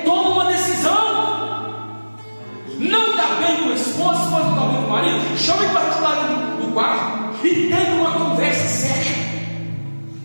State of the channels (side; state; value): both; inverted; correlation -1.00